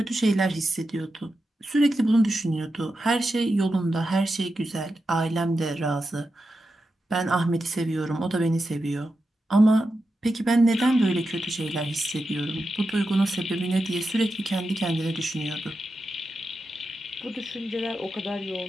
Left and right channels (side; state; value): both; normal; correlation 0.89